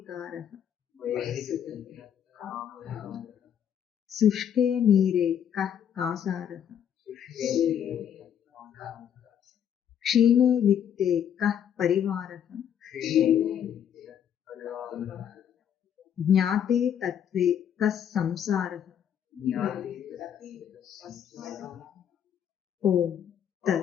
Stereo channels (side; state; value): right; quieter; 9.1 dB